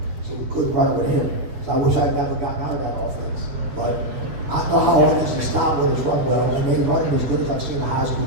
So we couldn't run it with him. So I wish I'd never gotten out of that offense. But I know how hard it is to stop when it's run well, and they run it as good as I've seen a high school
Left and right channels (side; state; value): left; late; 7.6 ms